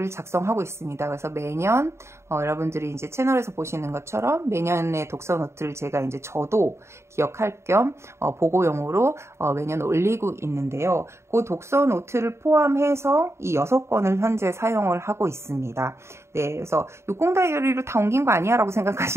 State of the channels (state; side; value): late; left; 0.13 ms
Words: 작성하고 있습니다. 그래서 매년 여러분들이 이제 채널에서 보시는 것처럼 매년의 독서 노트를 제가 이제 저도 기억할 겸 보고용으로 매년 올리고 있는데요. 그 독서 노트를 포함해서 이 6권을 현재 사용을 하고 있습니다. 네, 그래서 60 다이어리로 다 옮긴 거 아니야? 라고